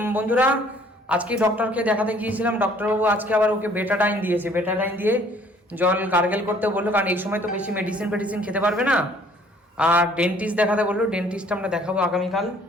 বন্ধুরা আজকে ডক্টরকে দেখাতে গিয়েছিলাম, ডক্টরবাবু আজকে আবার ওকে বেটাডাইন দিয়েছে। বেটাডাইন দিয়ে জল গার্গেল করতে বললো, কারণ এই সময় তো বেশি মেডিসিন খেতে পারবে না। আর ডেন্টিস্ট দেখাতে বললো, ডেন্টিস্ট আমরা দেখাবো আগামীকাল।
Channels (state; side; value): normal; both; correlation 0.58